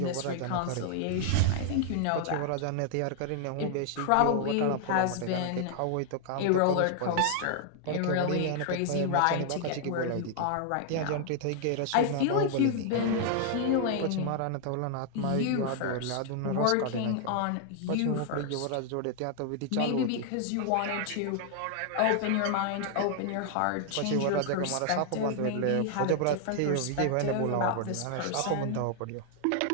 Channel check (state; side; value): different; both; correlation 0.00